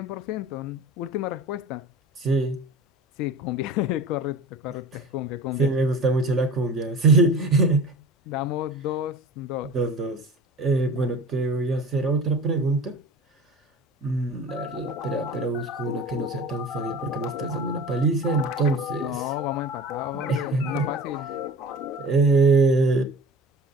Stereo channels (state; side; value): normal; both; correlation 0.39